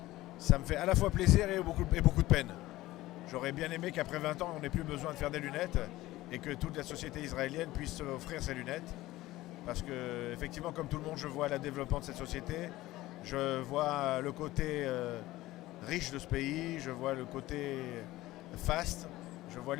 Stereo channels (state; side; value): quieter; right; 17.2 dB